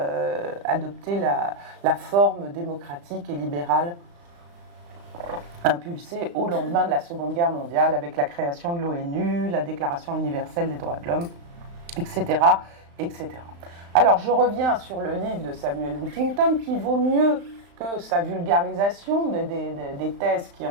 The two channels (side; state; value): left; late; 35 ms